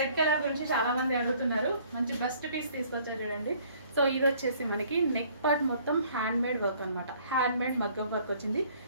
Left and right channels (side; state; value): both; inverted; correlation -0.59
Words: కలర్ గురించి చాలా మంది అడుగుతున్నారు. మంచి బెస్ట్ పీస్ తీసుకొచ్చారు చూడండి. సో ఇది వచ్చేసి మనకి నెక్ పార్ట్ మొత్తం హ్యాండ్ మేడ్ వర్క్ అనమాట. హ్యాండ్ మేడ్ మగ్గం వర్క్ వచ్చింది,